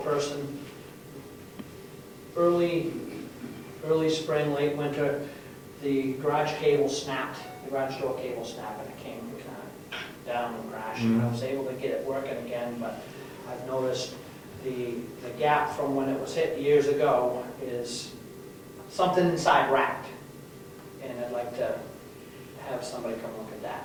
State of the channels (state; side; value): identical; both; correlation 1.00